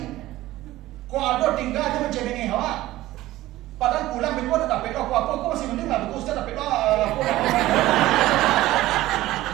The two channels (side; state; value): left; quieter; 16.3 dB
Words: Kau ada tinggal aja mencemengi awak. Padahal pulang Ibu ada dapat apa-apa. Kau masih mending lah. Ustaz dapat apa.